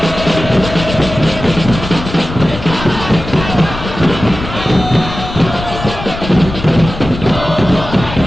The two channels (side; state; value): left; noise; rumble, 9 dB below the sound